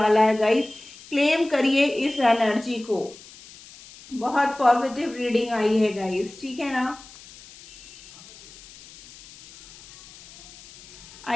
है गाइस, क्लेम करिए इस एनर्जी को। बहुत पॉजिटिव रीडिंग आई है गाइस, ठीक है ना।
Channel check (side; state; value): left; noise; hiss, 20 dB below the sound